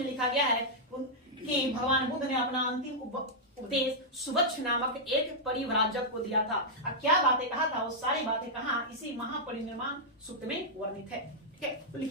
लिखा गया है कि भगवान बुद्ध ने अपना अंतिम उपदेश सुभच्छ नामक एक परिव्राजक को दिया था। अब क्या बातें कहा था, वो सारी बातें कहां? इसी महापरिनिर्वाण सूक्त में वर्णित है। ठीक है, तो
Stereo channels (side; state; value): both; normal; correlation -0.07